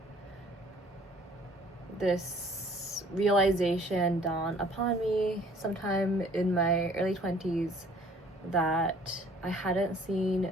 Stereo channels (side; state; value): both; normal; correlation 0.56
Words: this realization dawned upon me sometime in my early 20s that I hadn't